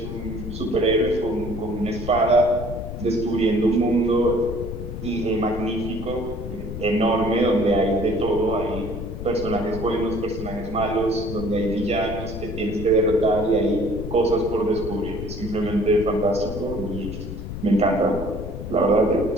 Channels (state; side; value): noise; left; rumble, 8 dB below the sound